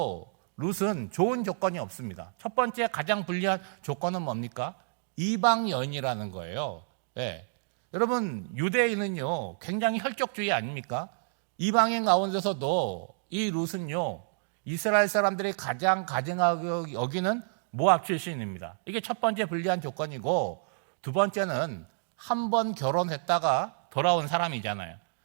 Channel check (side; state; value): left; silent; digital silence